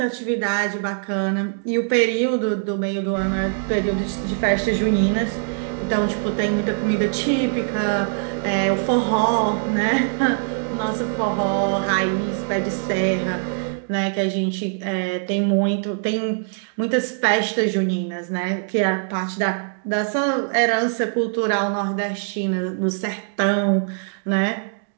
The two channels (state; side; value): silent; left; digital silence